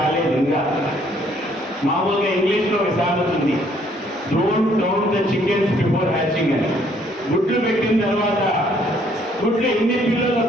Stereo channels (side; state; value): both; normal; correlation 0.65